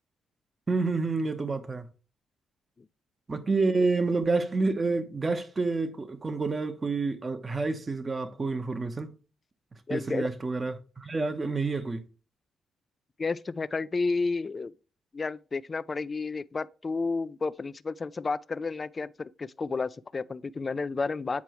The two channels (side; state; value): both; normal; correlation 0.88